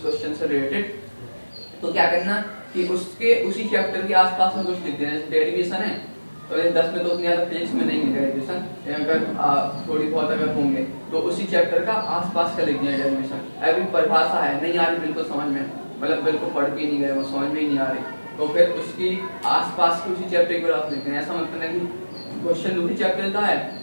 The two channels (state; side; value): inverted; both; correlation -1.00